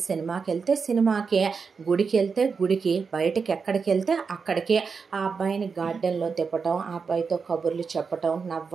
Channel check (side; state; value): left; quieter; 5.4 dB